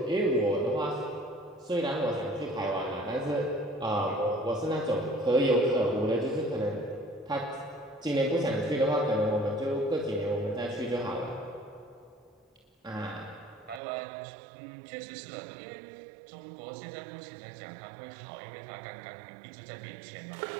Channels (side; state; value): left; drops out; at 13.8 s